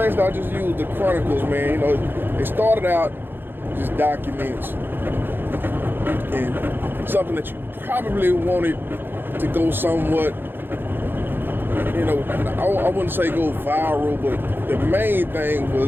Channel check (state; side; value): late; left; 0.099 ms